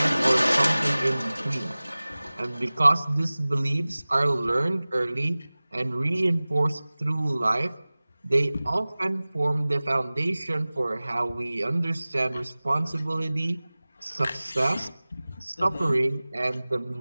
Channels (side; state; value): both; inverted; correlation -0.99